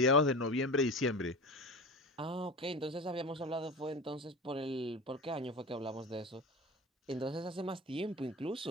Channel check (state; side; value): normal; both; correlation 0.30